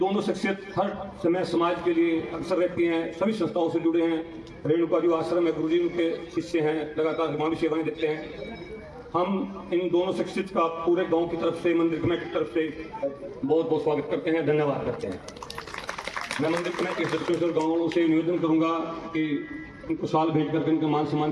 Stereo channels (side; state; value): both; identical; correlation 1.00